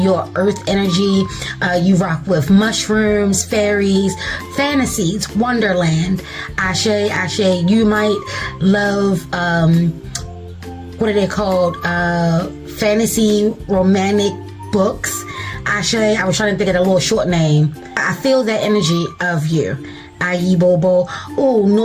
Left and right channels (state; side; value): identical; both; correlation 1.00